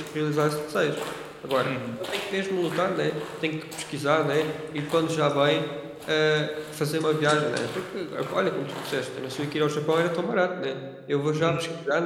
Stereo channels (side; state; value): both; identical; correlation 1.00